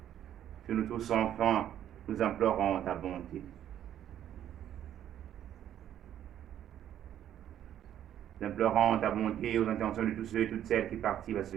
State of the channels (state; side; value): quieter; left; 10.9 dB